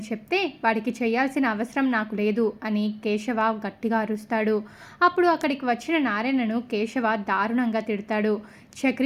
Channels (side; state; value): both; identical; correlation 1.00